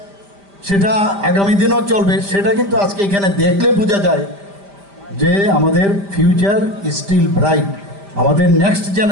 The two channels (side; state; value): left; late; 5.0 ms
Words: সেটা আগামী দিনও চলবে। সেটা কিন্তু আজকে এখানে দেখলে বোঝা যায় যে আমাদের ফিউচার স্টিল ব্রাইট। আমাদের নেক্সট